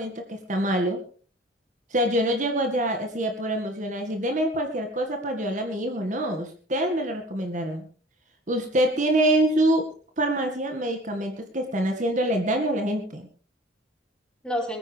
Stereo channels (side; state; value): both; normal; correlation 0.45